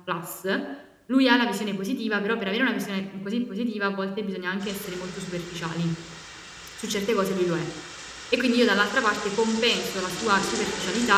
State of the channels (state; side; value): identical; both; correlation 1.00